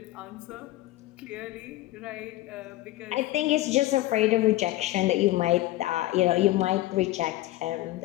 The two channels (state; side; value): quieter; right; 16.8 dB